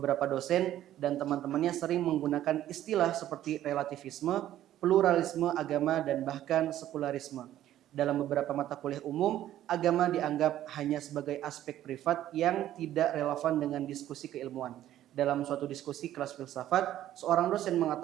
dosen dan teman-temannya sering menggunakan istilah seperti relativisme, pluralisme agama, dan bahkan sekularisme. Dalam beberapa mata kuliah umum, agama dianggap hanya sebagai aspek privat yang tidak relevan dengan diskusi keilmuan. Dalam suatu diskusi kelas filsafat, seorang dosen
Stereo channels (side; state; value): left; quieter; 12.7 dB